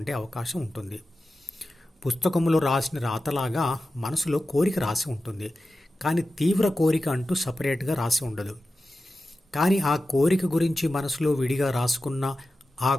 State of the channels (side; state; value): both; normal; correlation 0.93